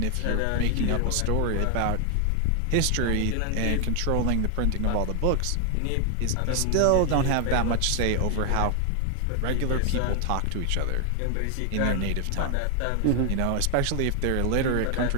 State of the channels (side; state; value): both; different; correlation 0.00